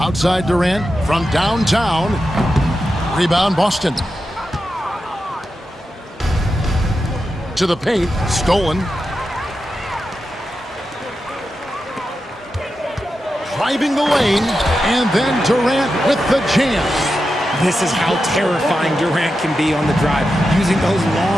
Durant from downtown. Rebound Boston. To the paint. Stolen. Driving the lane. And then Durant with the jam. This is how terrifying Durant can be on the drive, using those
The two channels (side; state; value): both; normal; correlation 0.89